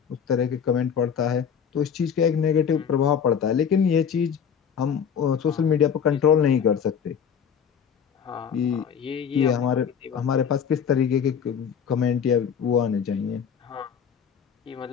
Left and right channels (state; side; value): quieter; right; 7.5 dB